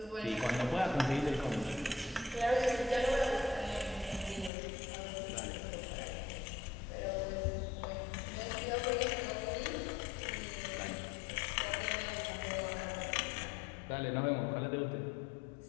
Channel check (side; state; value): right; drops out; at 4.5 s